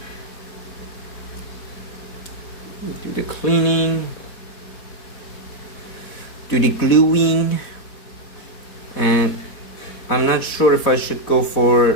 Do the cleaning, do the gluing, and I'm not sure if I should go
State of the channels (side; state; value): right; late; 4.1 ms